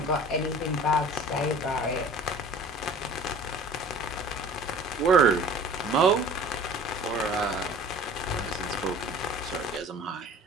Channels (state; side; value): normal; both; correlation 0.45